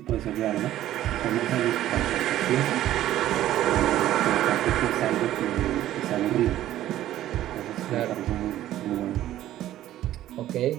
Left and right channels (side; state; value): left; quieter; 13.4 dB